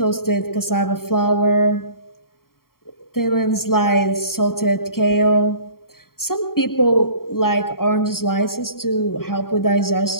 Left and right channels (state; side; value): late; right; 0.93 ms